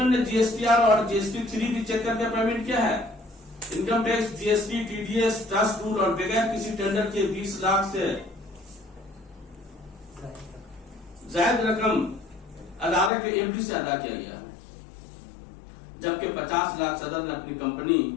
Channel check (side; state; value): right; drops out; at 13.1 s